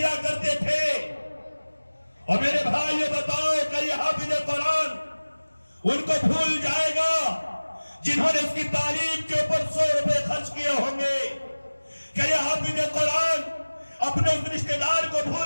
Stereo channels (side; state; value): both; inverted; correlation -1.00